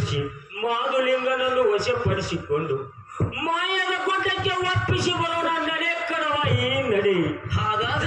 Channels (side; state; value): both; identical; correlation 1.00